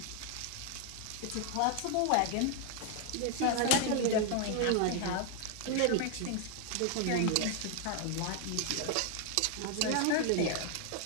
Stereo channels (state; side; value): different; both; correlation 0.00